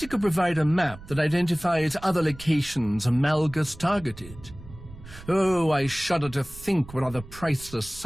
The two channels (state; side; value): noise; right; rumble, 17 dB below the sound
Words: you could provide a map that identifies other locations Malgus targeted. Oh, I shudder to think what other priceless